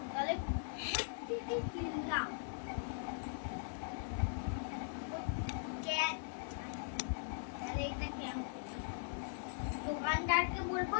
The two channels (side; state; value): right; silent; digital silence